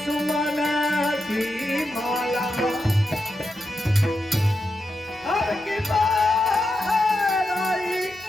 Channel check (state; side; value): normal; both; correlation 0.87